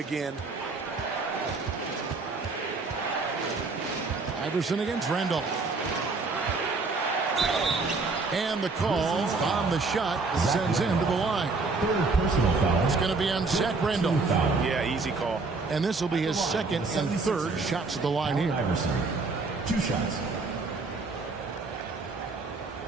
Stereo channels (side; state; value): left; quieter; 3.9 dB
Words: Iverson against Randolph. And the call on the shot sends him to the line. Third personal foul. It's going to be on Zach Randolph. Yeah, easy call. And this will be his second and third shots at the line here. Iverson. 2 shots.